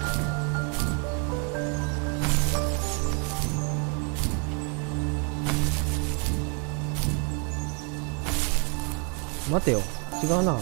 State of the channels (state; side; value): quieter; left; 37.1 dB